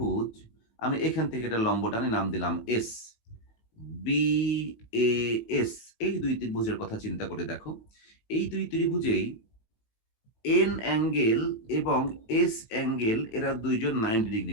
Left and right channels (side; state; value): right; late; 18 ms